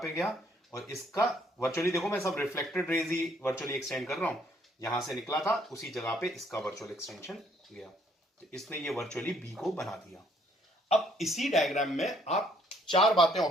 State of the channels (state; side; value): normal; both; correlation 0.66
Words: गया, और इसका वर्चुअली देखो मैं सब रिफ्लेक्टेड रेज ही वर्चुअली एक्सटेंड कर रहा हूं, यहां से निकला था उसी जगह पे इसका वर्चुअल एक्सटेंशन गया, तो इसने ये वर्चुअली बी को बना दिया। अब इसी डायग्राम में आप चार बातें